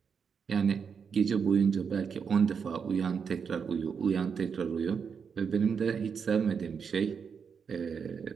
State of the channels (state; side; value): quieter; left; 6.4 dB